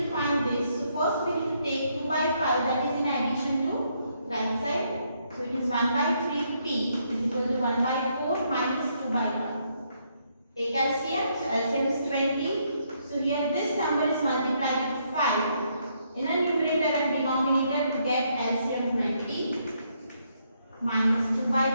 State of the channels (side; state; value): both; inverted; correlation -0.74